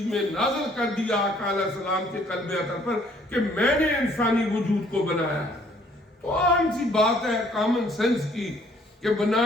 میں نازل کر دیا آقا علیہ السلام کے قلب اطہر پر کہ میں نے انسانی وجود کو بنایا ہے۔ تو عام سی بات ہے کامن سینس کی کہ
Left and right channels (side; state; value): both; normal; correlation 0.61